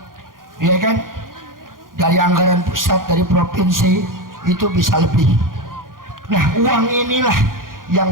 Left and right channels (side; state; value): left; late; 0.90 ms